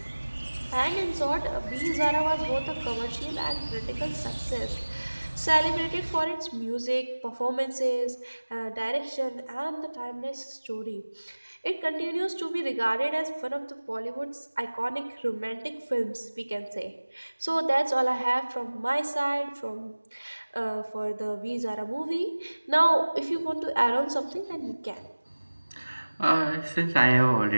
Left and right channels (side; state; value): both; inverted; correlation -1.00